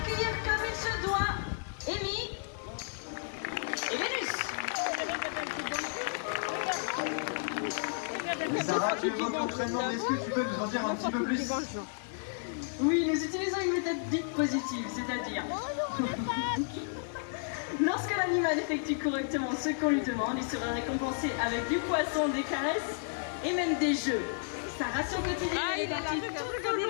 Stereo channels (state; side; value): silent; right; 56 dB below the other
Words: comme il se doit Amy et Vénus. Sarah, tu évoques l'entraînement, mais est-ce que tu peux nous en dire un petit peu plus? Oui, nous utilisons une méthode dite positive, c'est-à-dire lorsque l'animal effectue correctement ce qu'on lui demande, il sera récompensé avec du poisson, des caresses et même des jeux. Sa ration quotidienne est partie tout au long de